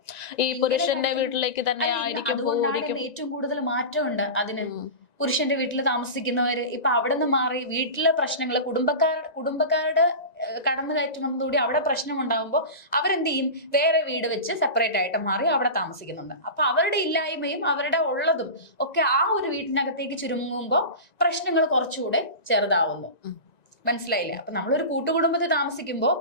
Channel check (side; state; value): right; late; 1.9 ms